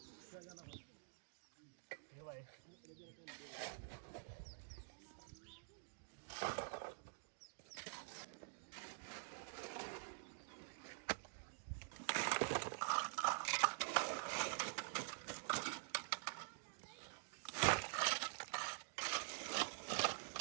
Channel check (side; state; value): left; silent; digital silence